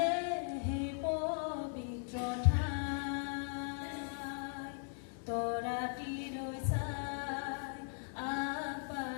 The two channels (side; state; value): right; silent; 52 dB below the other